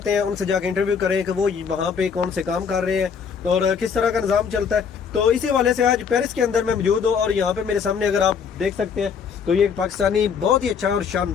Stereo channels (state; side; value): quieter; right; 6.5 dB